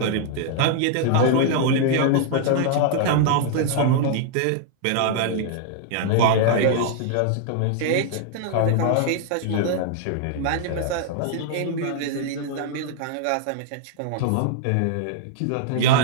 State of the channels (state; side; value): different; both; correlation -0.01